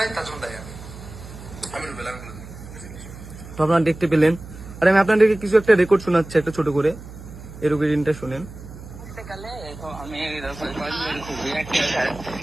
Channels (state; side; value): noise; right; hum, 15 dB below the sound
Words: তার জন্য দায়ী আমি রুবেল। তো আপনারা দেখতে পেলেন। আর আমি আপনাদেরকে কিছু একটা রেকর্ড শোনাচ্ছি, একটা ছোট করে, এর রেকর্ডিংটা শুনেন। আমি